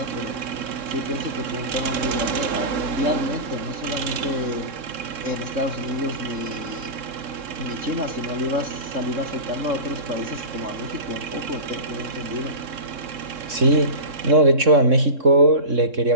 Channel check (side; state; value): left; late; 3.6 ms